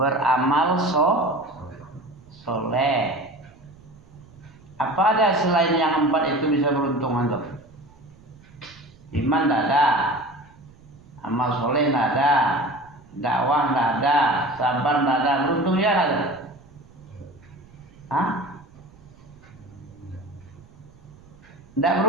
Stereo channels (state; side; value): noise; right; rumble, 25 dB below the sound